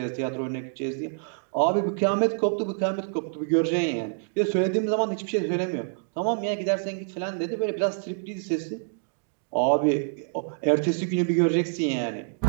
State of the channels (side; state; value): left; silent; digital silence